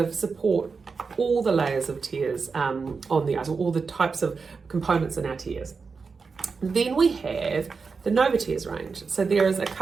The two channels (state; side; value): quieter; left; 4.9 dB